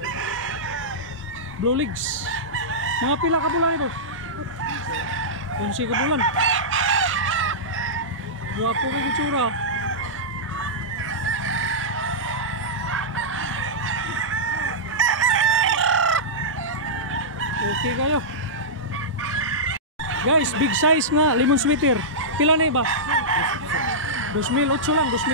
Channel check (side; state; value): both; normal; correlation -0.13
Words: Blue Legs. Mga pila ka bulan ito? 11 ka bulan. Guwapo kay itsura. Okay kayo. Guys, big size nga lemon sweater. Pila na ba? 2,008 lang,